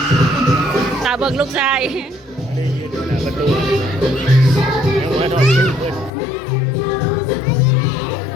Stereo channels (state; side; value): drops out; right; at 6.1 s